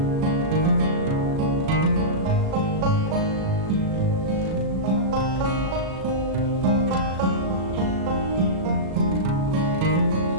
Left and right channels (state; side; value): late; left; 37 ms